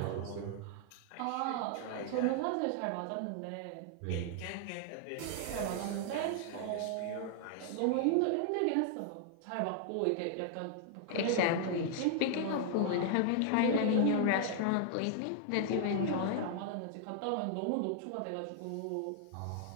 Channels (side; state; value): both; different; correlation 0.00